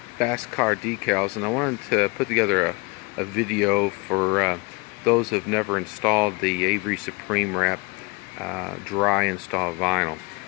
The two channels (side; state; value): right; quieter; 28.0 dB